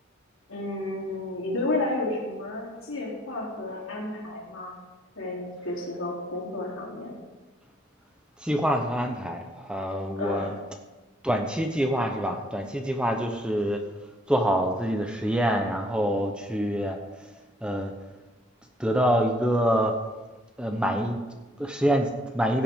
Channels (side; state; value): both; normal; correlation 0.64